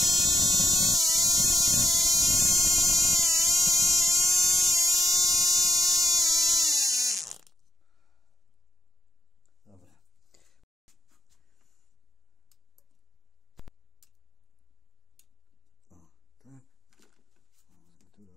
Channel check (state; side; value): normal; both; correlation 0.71